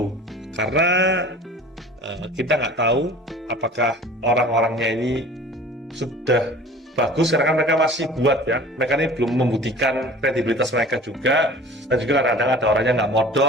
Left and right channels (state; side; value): normal; both; correlation 0.43